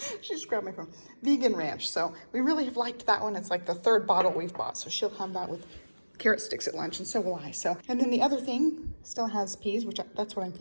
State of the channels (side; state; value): both; inverted; correlation -1.00